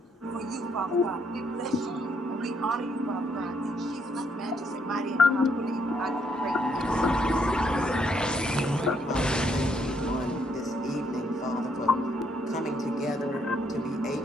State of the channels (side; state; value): both; normal; correlation 0.72